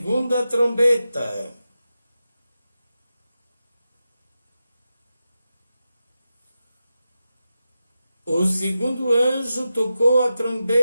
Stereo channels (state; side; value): inverted; both; correlation -0.91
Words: trombeta. O segundo anjo tocou a